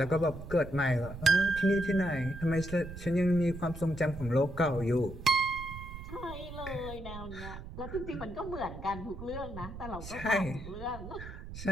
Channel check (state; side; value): noise; right; rumble, 11 dB below the sound